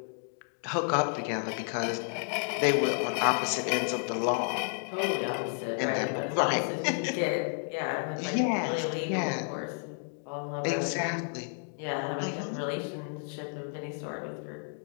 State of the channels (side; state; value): right; silent; 57 dB below the other